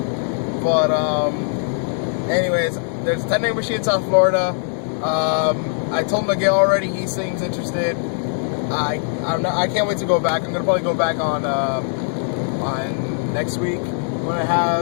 But anyways, there's a Technica machine in South Florida. I told Miguel already. He seems interested. I can't wait to go back. I'm gonna probably go back on next week when I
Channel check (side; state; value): right; silent; digital silence